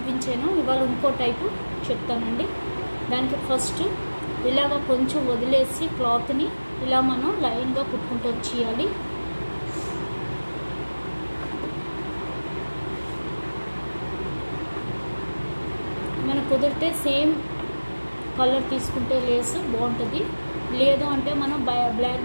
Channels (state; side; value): inverted; both; correlation -1.00